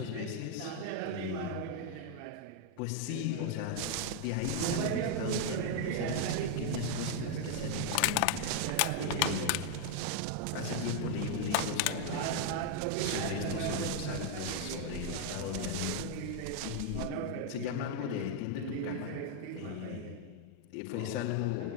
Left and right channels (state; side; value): different; both; correlation 0.00